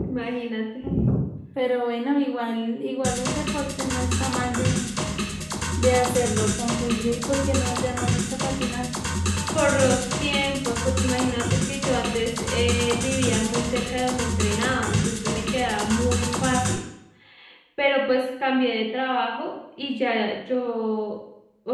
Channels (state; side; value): identical; both; correlation 1.00